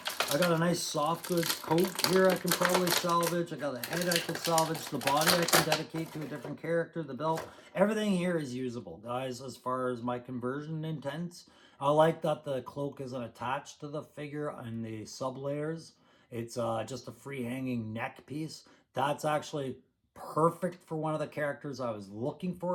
I got a nice soft goods coat here I can probably salvage. I got a head I can salvage. The body I can dedicate to a different character. The belt. Everything here is usable, guys, as far as my conversion intents. I like that the cloak isn't attached to the figure and the sub layers. It's just a free hanging neck piece. That's actually perfect for one of the characters I was looking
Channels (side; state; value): both; identical; correlation 1.00